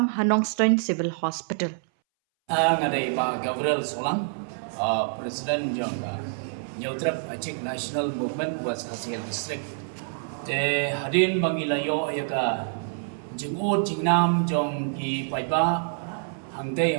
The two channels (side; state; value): left; silent; 60 dB below the other